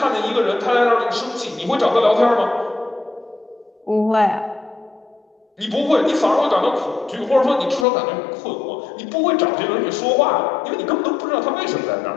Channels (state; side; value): drops out; right; at 7.9 s